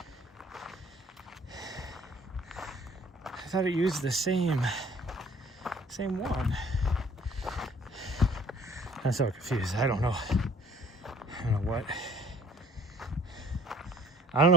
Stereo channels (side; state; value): both; normal; correlation 0.54